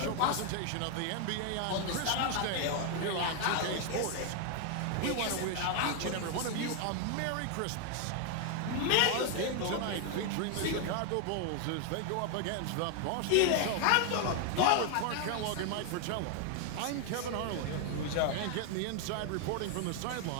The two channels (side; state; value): both; different; correlation 0.00